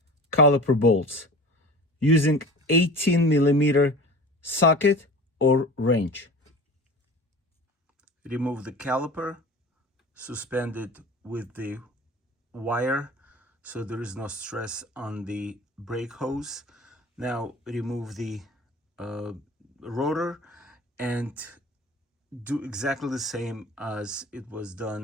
caliper bolts using 18mm socket or wrench. Remove the caliper, suspend it with the wire so there is no stress on the brake hose. Now remove the rotor and do exactly the same as it was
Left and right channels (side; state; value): both; normal; correlation 0.37